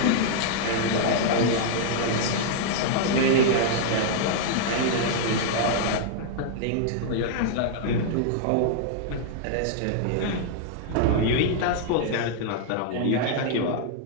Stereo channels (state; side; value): different; both; correlation -0.01